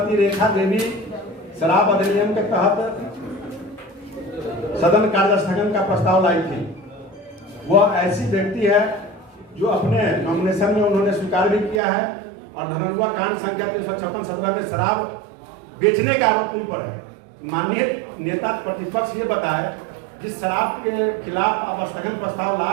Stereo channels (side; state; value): left; drops out; at 11.8 s